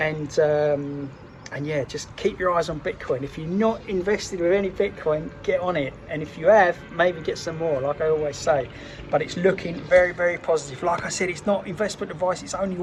And yeah, just keep your eyes on Bitcoin. If you're not invested with any Bitcoin, get on it. And if you have, maybe get some more, like I always say. But it's looking very, very positive. Like I said, it's not investment advice. It's only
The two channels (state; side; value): identical; both; correlation 1.00